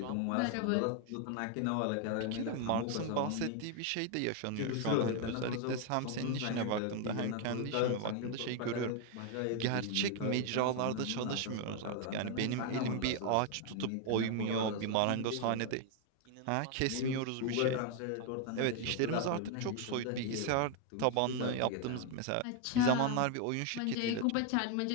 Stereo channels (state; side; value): different; both; correlation 0.01